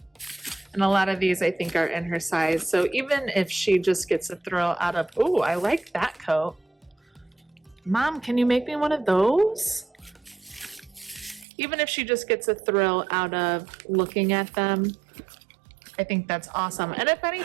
And a lot of these I think are in her size. So even if she just gets a thrill out of, oh, I like that coat. Mom, can you make me one of those? Even if she just gets a thrill out of looking at them, I think that's awesome. And if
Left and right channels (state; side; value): drops out; left; at 11.5 s